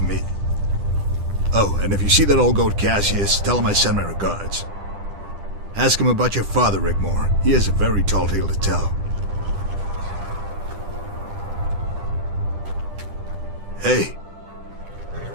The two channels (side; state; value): left; late; 10 ms